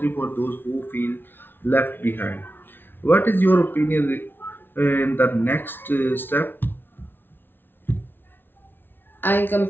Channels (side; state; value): right; late; 0.10 ms